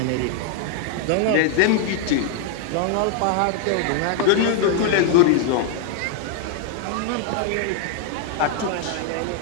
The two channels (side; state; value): both; different; correlation 0.00